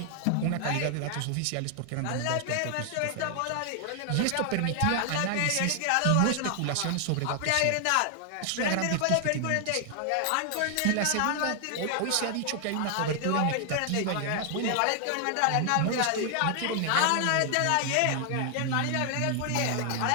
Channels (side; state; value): both; different; correlation 0.00